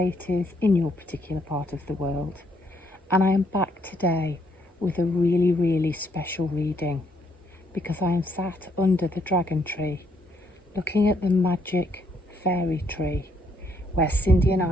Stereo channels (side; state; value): both; normal; correlation 0.72